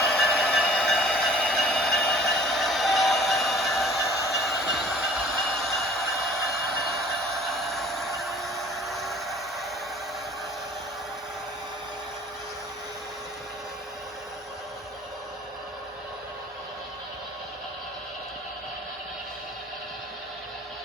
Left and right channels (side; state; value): both; normal; correlation 0.50